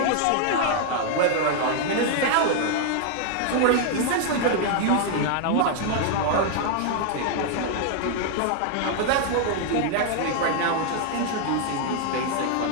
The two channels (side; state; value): both; different; correlation 0.00